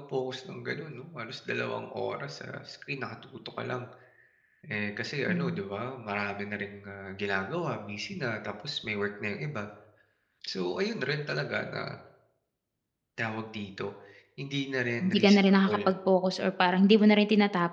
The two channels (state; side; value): identical; both; correlation 1.00